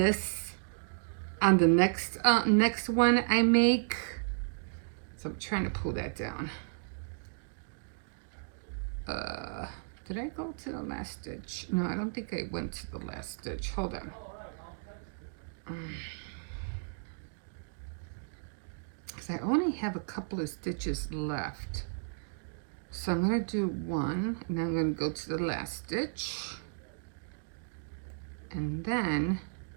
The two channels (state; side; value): silent; left; digital silence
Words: on the next one I make. So I'm trying to pull that down. Did I go to the last stitch? No, I don't think I went to the last stitch. Hold on. Because I only have a couple of stitches left. So I'm going to do one, and then I'm going to go to the last stitch. And then,